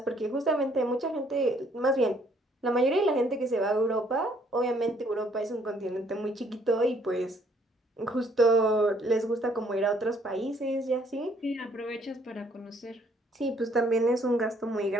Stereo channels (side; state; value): both; normal; correlation 0.64